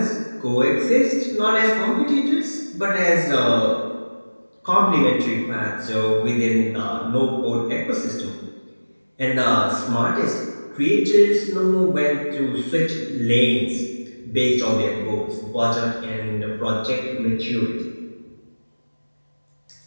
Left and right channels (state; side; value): inverted; both; correlation -1.00